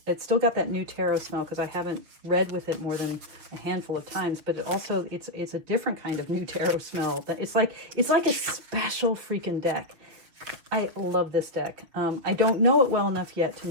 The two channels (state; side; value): late; left; 6.5 ms